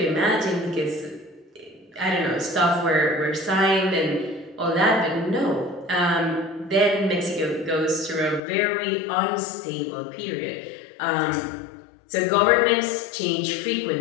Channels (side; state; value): right; drops out; at 8.4 s